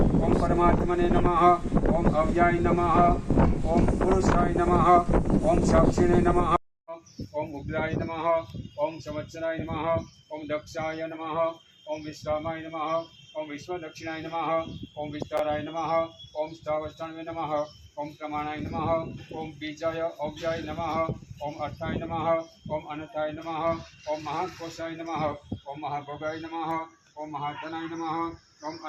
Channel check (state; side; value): identical; both; correlation 1.00